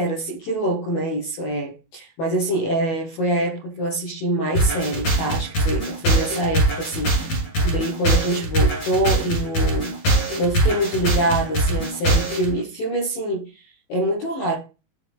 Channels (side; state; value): right; late; 19 ms